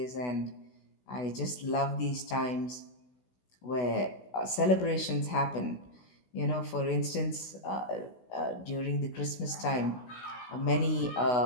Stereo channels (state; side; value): late; right; 16 ms